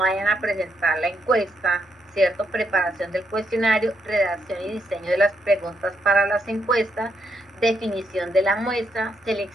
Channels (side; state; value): both; normal; correlation 0.78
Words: a presentar la encuesta, ¿cierto? Preparación del cuestionario, redacción y diseño de las preguntas para las encuestas, definición de la muestra,